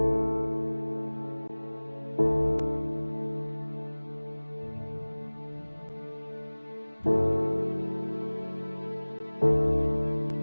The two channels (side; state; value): both; inverted; correlation -1.00